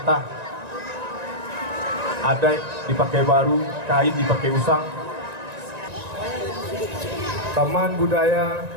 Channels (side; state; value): left; late; 1.9 ms